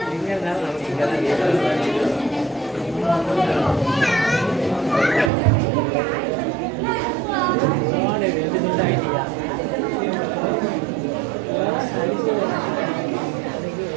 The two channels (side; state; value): left; drops out; at 5.3 s